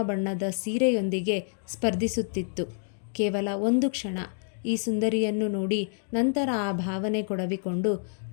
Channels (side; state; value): right; silent; digital silence